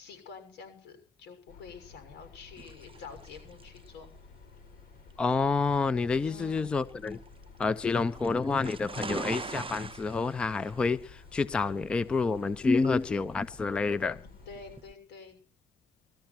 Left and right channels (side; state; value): right; quieter; 3.7 dB